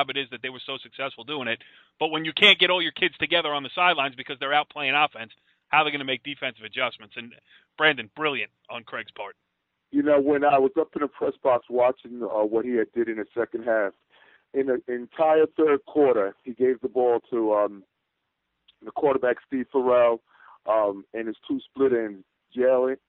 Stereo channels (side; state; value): both; identical; correlation 1.00